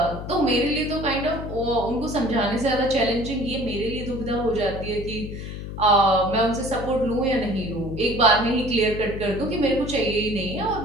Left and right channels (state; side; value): noise; left; hum, 8 dB below the sound